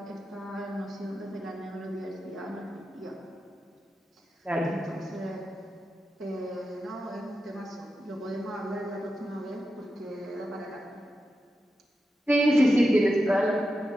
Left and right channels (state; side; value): normal; both; correlation 0.89